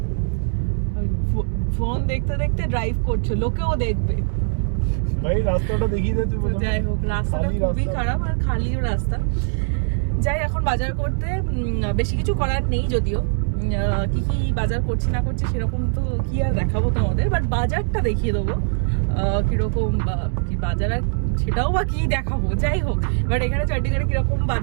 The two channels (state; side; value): silent; left; digital silence